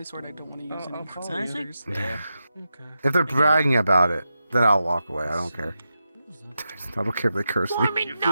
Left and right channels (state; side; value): inverted; both; correlation -0.88